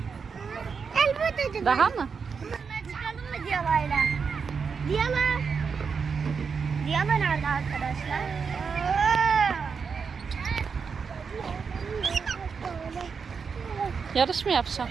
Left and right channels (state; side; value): quieter; left; 5.8 dB